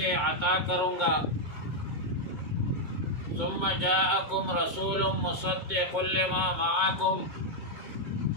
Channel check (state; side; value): late; left; 2.2 ms